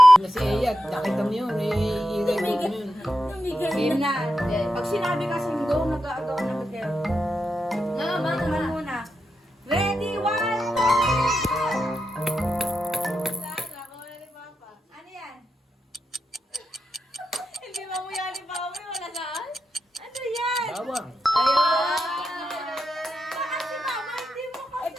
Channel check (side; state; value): both; normal; correlation 0.87